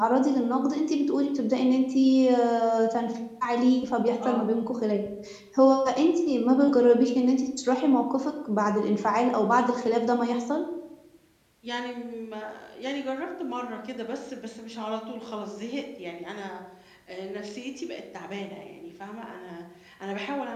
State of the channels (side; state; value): both; identical; correlation 1.00